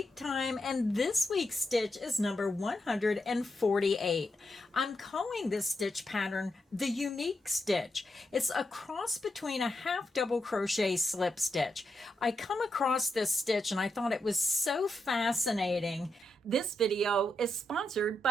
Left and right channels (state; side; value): normal; both; correlation 0.84